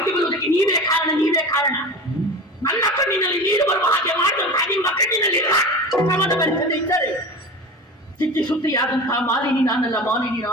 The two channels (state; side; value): normal; both; correlation 0.31